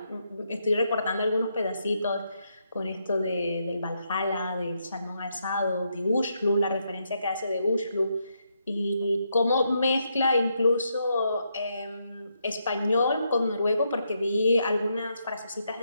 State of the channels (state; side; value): inverted; both; correlation -0.79